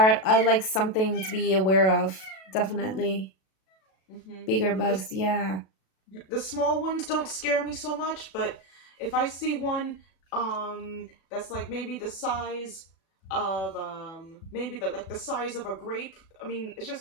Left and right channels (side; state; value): right; late; 37 ms